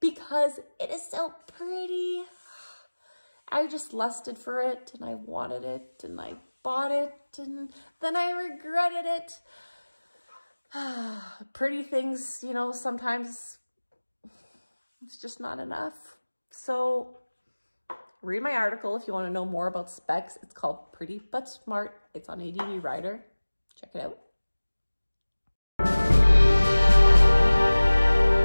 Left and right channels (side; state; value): both; inverted; correlation -1.00